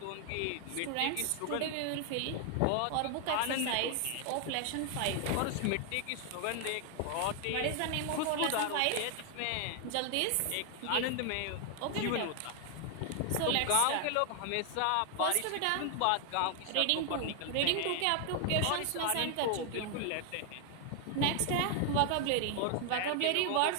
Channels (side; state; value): both; different; correlation 0.00